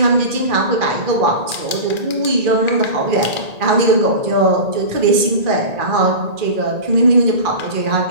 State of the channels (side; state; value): left; late; 1.8 ms